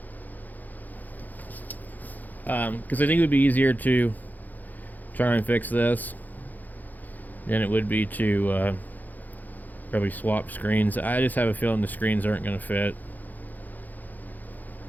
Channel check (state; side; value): late; right; 0.083 ms